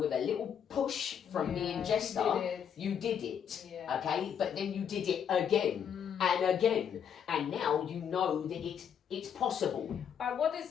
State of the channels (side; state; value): right; quieter; 8.2 dB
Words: a little push from me and Yeah, Jester, you did it. you did it, Yeah. okay? But then you did it again and again, and now you know that it's possible. But what